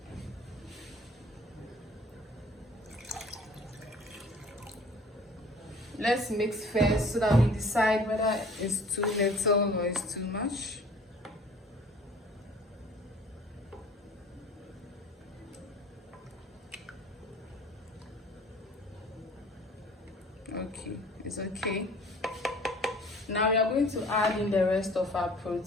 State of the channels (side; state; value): both; normal; correlation 0.50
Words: Let's mix first so that we decide whether it's too little or it's too much. Okay, it's okay. Now we are going to add in the rest of our